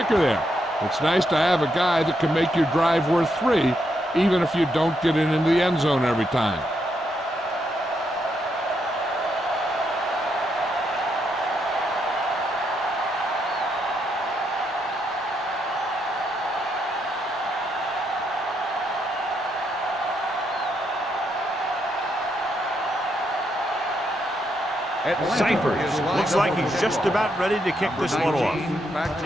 there. It's nice to have a guy that can make your drive worth 3, even if you don't get it into the end zone every time. Cyphers looks like he's just about ready to kick this one off.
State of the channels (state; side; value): normal; both; correlation 0.79